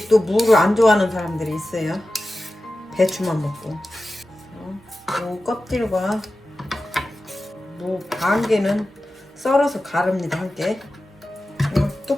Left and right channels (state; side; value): normal; both; correlation 0.94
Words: 또 무를 안 좋아하는 사람들이 있어요. 배추만 먹고. 무 껍질과 무 반 개는 썰어서 가릅니다. 함께